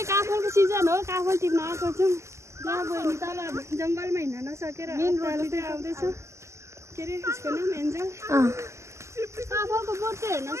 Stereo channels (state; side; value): late; left; 0.13 ms